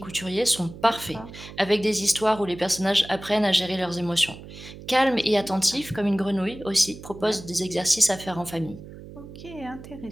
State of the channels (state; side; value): noise; right; hum, 15 dB below the sound